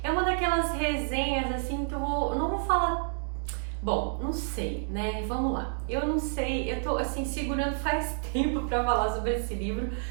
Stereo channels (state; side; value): silent; left; digital silence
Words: é uma daquelas resenhas assim que eu não vou falar. Bom, não sei, né? Vamos lá. Eu não sei, eu tô assim segurando faz tempo pra falar sobre esse livro,